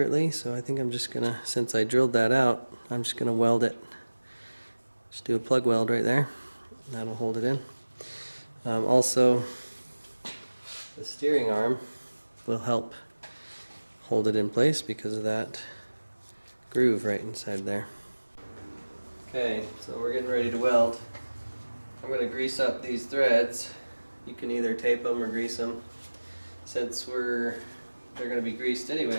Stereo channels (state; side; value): inverted; both; correlation -1.00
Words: so I think I'm just gonna, since I drilled that out, I'm just gonna weld it. Just do a plug weld right there. That'll hold it in. Also, the steering arm will help hold it in place because of that groove right inside there. Okay, so we're getting ready to weld. I'm going to grease up these threads. You can either tape them or grease them. Since they're going to be greased